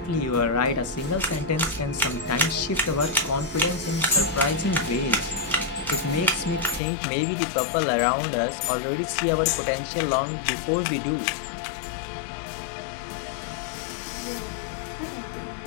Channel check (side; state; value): right; drops out; at 6.8 s